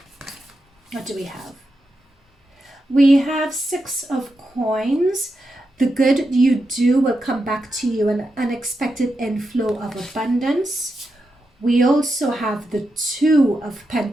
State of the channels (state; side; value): normal; both; correlation 0.87